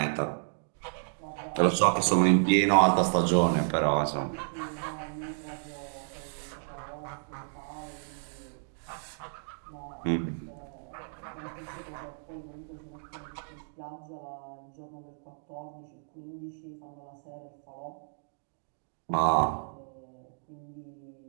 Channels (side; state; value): left; silent; digital silence